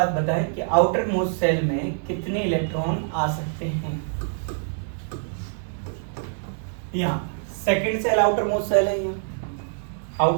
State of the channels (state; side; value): silent; left; digital silence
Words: बताएं कि आउटर मोस्ट सेल में कितने इलेक्ट्रॉन आ सकते हैं। यहाँ second shell outermost shell है, यहाँ